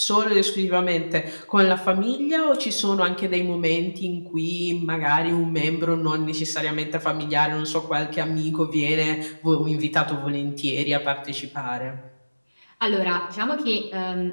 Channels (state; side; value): inverted; both; correlation -1.00